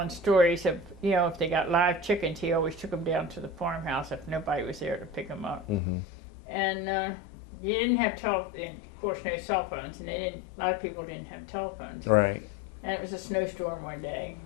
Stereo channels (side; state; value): right; drops out; at 5.8 s